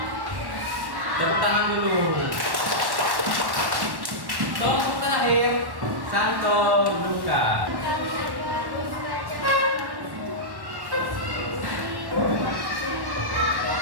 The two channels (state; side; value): late; left; 1.1 ms